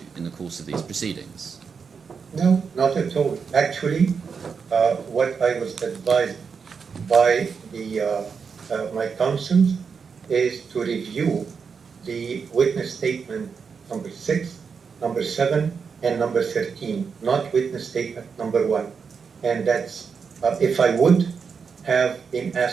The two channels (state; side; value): quieter; left; 5.9 dB